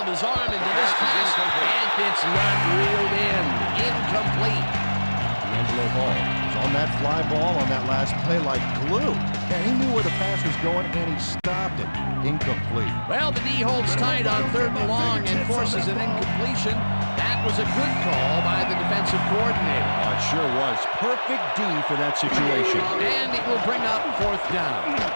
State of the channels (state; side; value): inverted; both; correlation -1.00